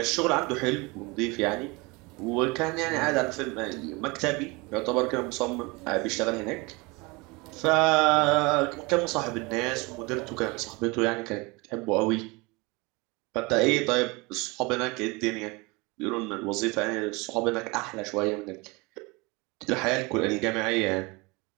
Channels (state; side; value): quieter; left; 26.0 dB